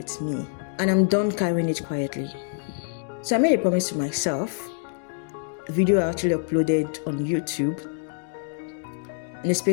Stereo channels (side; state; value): right; silent; digital silence